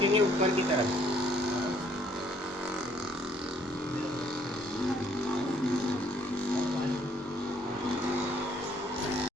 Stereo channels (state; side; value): normal; both; correlation 0.65